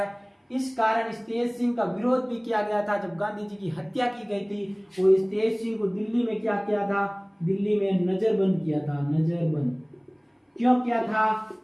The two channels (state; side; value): identical; both; correlation 1.00